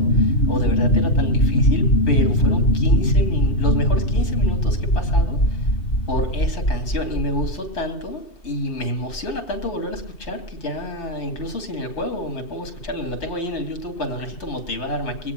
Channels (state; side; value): late; right; 2.7 ms